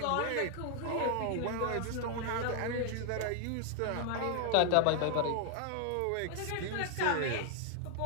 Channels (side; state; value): both; different; correlation 0.00